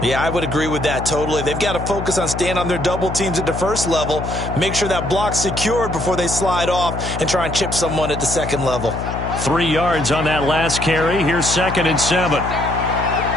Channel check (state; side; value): noise; left; hum, 6 dB below the sound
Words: Yeah, I would agree with that totally. They've got to focus on staying on their double teams at the 1st level, make sure that block's secured before they slide off and try and chip someone at the 2nd level. 3 yards on that last carry. Here's 2nd and 7.